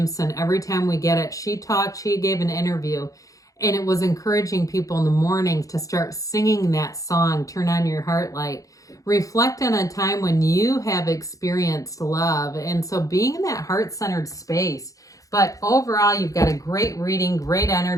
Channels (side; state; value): right; late; 0.16 ms